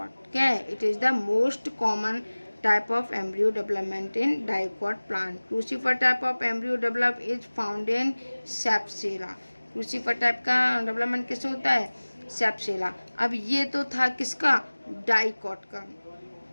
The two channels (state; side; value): inverted; both; correlation -1.00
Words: क्या है it is the most common type of embryo development in dicot plant. Crucifer type of embryo develop is found in Sapsela. Crucifer type का development किससे होता है सेप्सेला। अब ये तो था किसका डाइकॉट का,